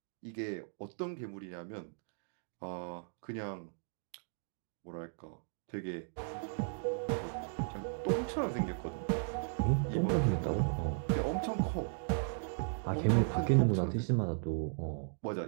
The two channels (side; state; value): left; silent; digital silence